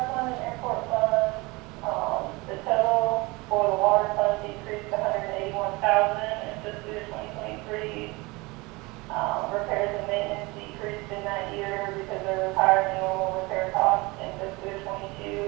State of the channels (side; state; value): left; quieter; 24.3 dB